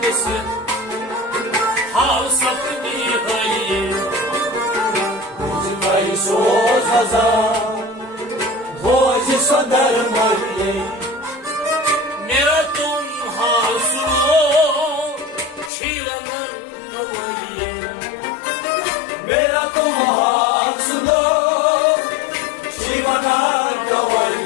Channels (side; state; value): right; drops out; at 15.7 s